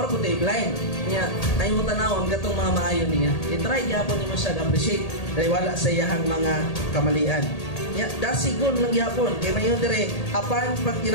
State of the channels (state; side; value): late; right; 1.8 ms